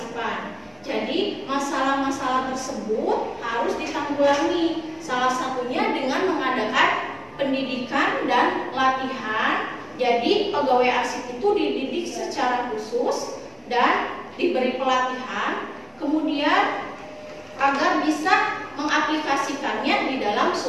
Jadi masalah-masalah tersebut harus ditanggulangi. Salah satunya dengan mengadakan pendidikan dan latihan. Jadi pegawai arsip itu dididik secara khusus dan diberi pelatihan, kemudian agar bisa mengaplikasikannya di dalam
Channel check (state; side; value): identical; both; correlation 1.00